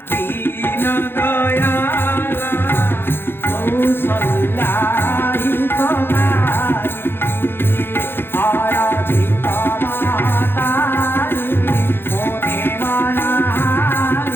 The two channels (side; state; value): right; late; 0.11 ms